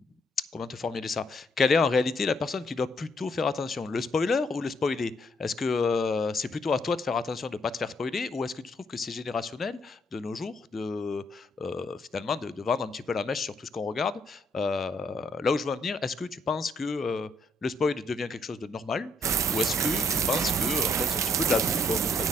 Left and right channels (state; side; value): normal; both; correlation 0.71